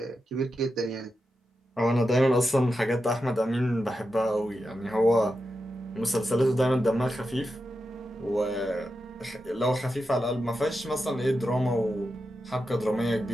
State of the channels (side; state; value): both; normal; correlation 0.89